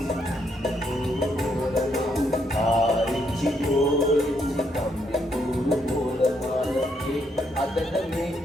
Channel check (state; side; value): normal; both; correlation 0.74